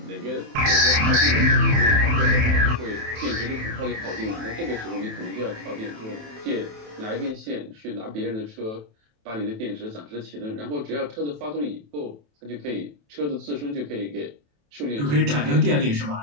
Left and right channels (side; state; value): left; late; 27 ms